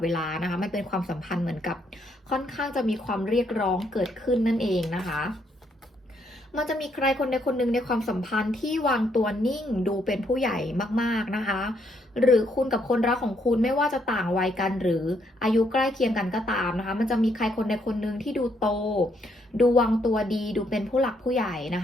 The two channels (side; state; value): both; normal; correlation 0.73